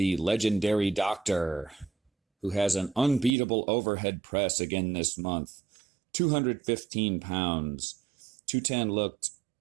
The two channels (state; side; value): drops out; left; at 3.3 s